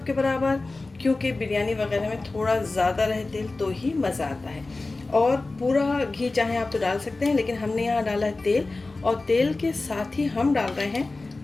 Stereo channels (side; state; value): right; quieter; 3.4 dB